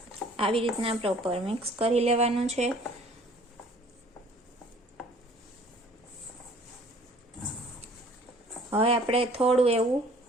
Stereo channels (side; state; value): both; normal; correlation 0.53